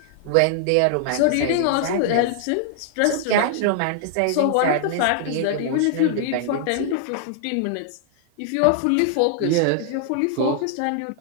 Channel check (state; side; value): different; both; correlation -0.01